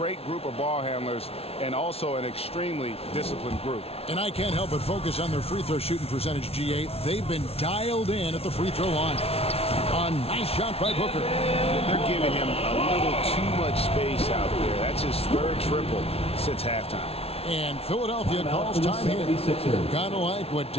group of ball handlers and also an extremely disciplined group. And I can't help but focus on their free throw shooting percentage, G8. They've been dialed in at the free throw line. A nice shot by Booker. They're giving him a little too much space out there. That's his 3rd triple since halftime. And Philadelphia calls time here. Kind of like what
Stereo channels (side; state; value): right; late; 0.29 ms